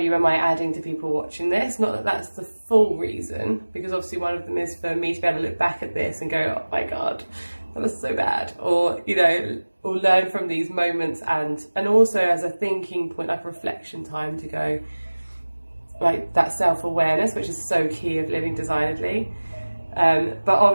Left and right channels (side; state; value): both; inverted; correlation -1.00